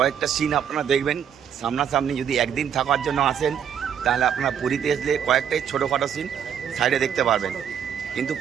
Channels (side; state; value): left; quieter; 8.5 dB